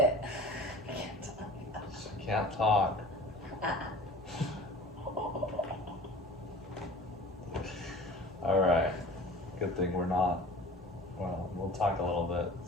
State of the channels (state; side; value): normal; both; correlation 0.42